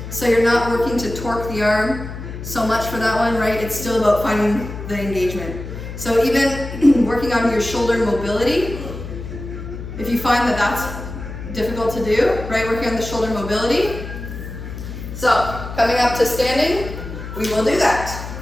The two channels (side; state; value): left; noise; hum, 9 dB below the sound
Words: So you're not working to torque the arm so much for that one, right? It's still about finding the engagement. So even working on your shoulder mobility, if you find that that's difficult to do, right? Working on the shoulder mobility. So, coming up to standing, we will do that.